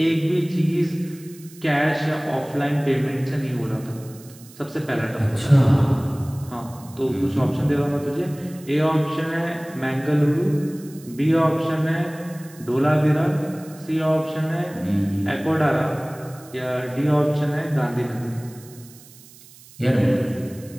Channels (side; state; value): right; noise; hiss, 22 dB below the sound